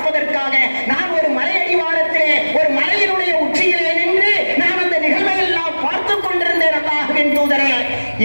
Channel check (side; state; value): both; inverted; correlation -1.00